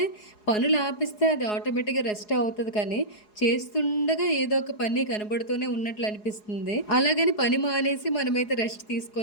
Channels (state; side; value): late; right; 4.8 ms